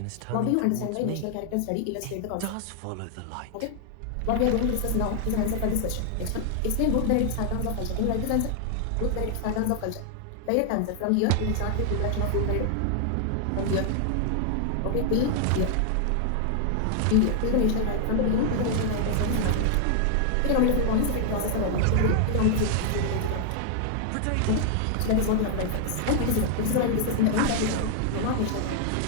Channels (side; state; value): both; different; correlation -0.01